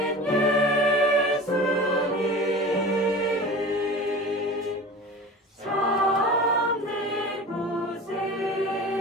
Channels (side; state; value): both; normal; correlation 0.36